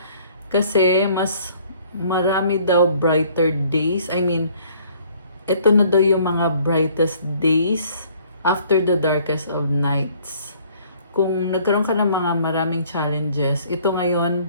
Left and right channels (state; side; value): inverted; both; correlation -0.58